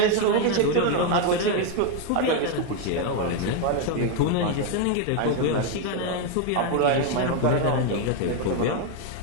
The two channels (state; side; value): different; both; correlation 0.01